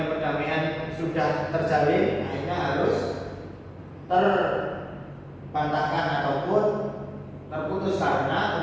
perdamaian sudah terjalin, akhirnya harus terbantahkan ataupun terputus karena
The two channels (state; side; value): identical; both; correlation 1.00